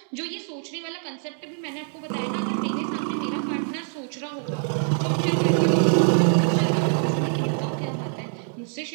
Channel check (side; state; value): left; silent; 56 dB below the other